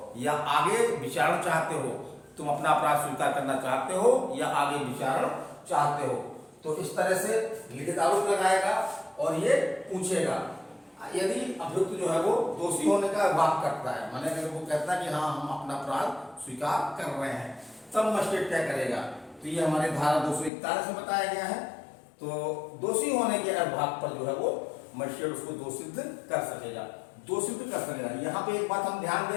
या आगे विचारण चाहते हो, तुम अपना अपराध स्वीकार करना चाहते हो या आगे विचारण चाहते हो। तो इस तरह से लिखित आरोप लगाएगा और ये पूछेगा। यदि अभियुक्त जो है वो दोषी होने का वाद करता है, माने अगर वो कहता है कि हाँ हम अपना अपराध स्वीकार कर रहे हैं, तब मजिस्ट्रेट क्या करेगा। तो ये हमारे धारा 241 में बताया गया है। तो दोषी होने के भाग पर जो है वो मजिस्ट्रेट उसको दोषित कर सकेगा, यहाँ पे एक बात हम ध्यान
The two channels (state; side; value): drops out; right; at 20.5 s